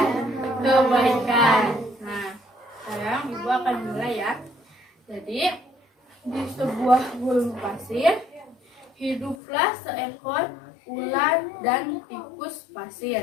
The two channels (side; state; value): right; drops out; at 9.3 s